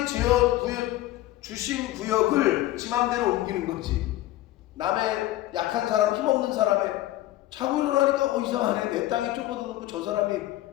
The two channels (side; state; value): right; quieter; 15.7 dB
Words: 주신 구역을 지 맘대로 옮기는 거지. 남의 약한 사람, 힘없는 사람의 자고 일어나니까 이상하네. 내 땅이 좁아졌고 저 사람이